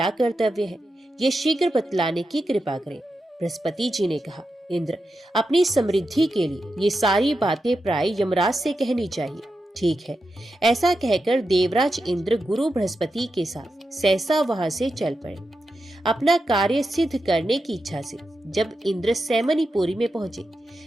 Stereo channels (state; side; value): normal; both; correlation 0.88